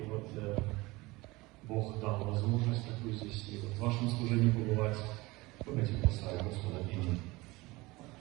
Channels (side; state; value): left; quieter; 21.9 dB